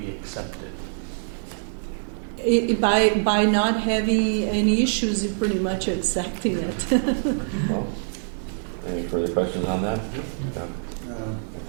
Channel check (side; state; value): left; silent; digital silence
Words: accept it? By not having any issues, you're pretty much accepting it. Well, any further questions on that? No. No. I